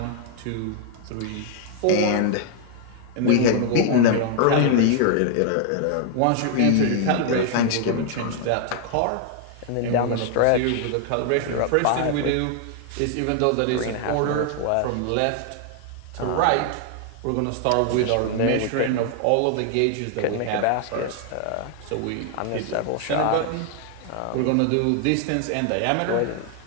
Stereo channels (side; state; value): both; different; correlation 0.00